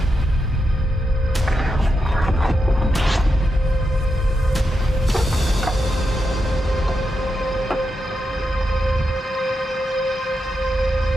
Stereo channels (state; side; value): normal; both; correlation 0.86